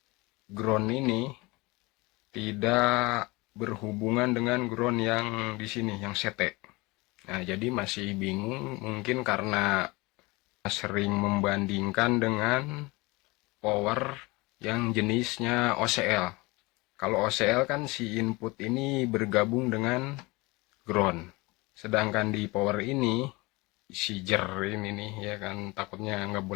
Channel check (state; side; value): quieter; right; 23.8 dB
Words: Ground ini tidak berhubungan dengan ground yang di sini, yang sete. Nah, jadi masih bingung mungkin karena sering membandingkan dengan power yang jenisnya OCL. Kalau OCL kan si input ini bergabung dengan ground. Sedangkan di power ini si jer ini nih ya kan, takutnya nggak